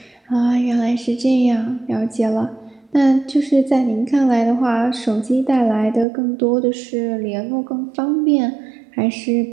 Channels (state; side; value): drops out; left; at 6.1 s